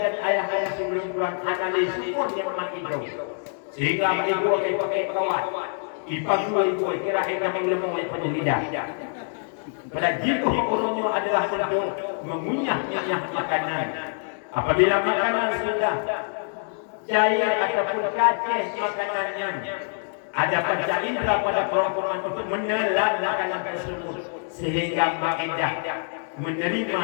ayah-ayah sebelum Tuhan analis syukur yang memang itu. Sehingga ibu pakai kawat. Ipang ibu kira kita mengelemu oleh penyelidah. Pada jika orangnya adalah untuk mengunyah-nyah makanan. Apabila makanan sudah cair ataupun kacih makanannya, ada panca indera pada kerongkongan untuk menelan makanan tersebut sehingga makindah menerima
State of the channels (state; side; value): silent; right; 61 dB below the other